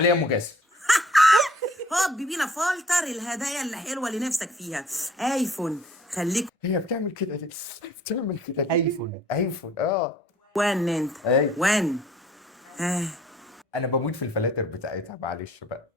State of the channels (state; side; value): normal; both; correlation 0.55